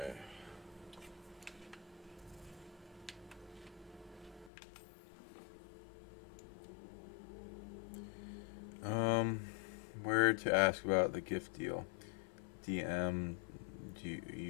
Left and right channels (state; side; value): drops out; right; at 4.5 s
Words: Where to ask about the gift deal? DM